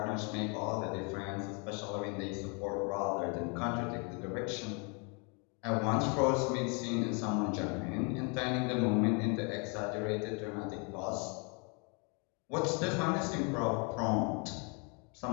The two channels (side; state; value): right; quieter; 34.8 dB